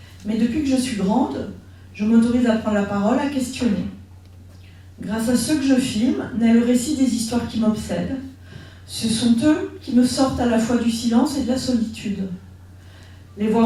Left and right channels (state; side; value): identical; both; correlation 1.00